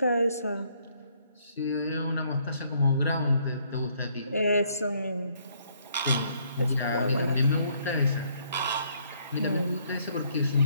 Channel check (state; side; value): inverted; both; correlation -0.67